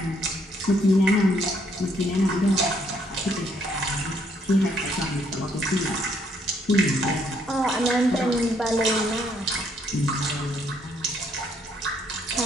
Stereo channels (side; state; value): both; normal; correlation 0.69